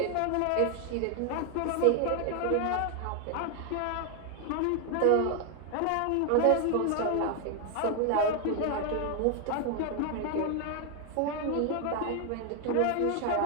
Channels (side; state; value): both; different; correlation 0.01